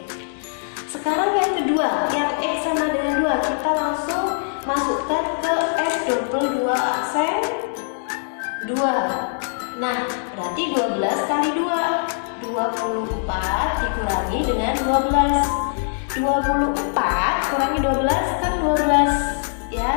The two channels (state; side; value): silent; right; digital silence